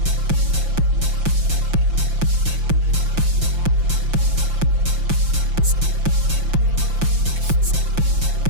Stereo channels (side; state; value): left; late; 5.8 ms